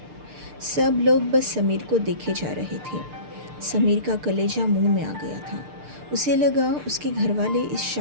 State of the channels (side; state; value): left; late; 6.7 ms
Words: सब लोग बस समीर को देखे जा रहे थे। समीर का कलेजा मुंह में आ गया था। उसे लगा उसके घर वाले इस